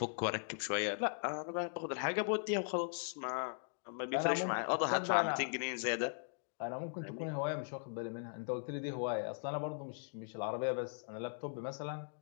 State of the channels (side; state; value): right; silent; digital silence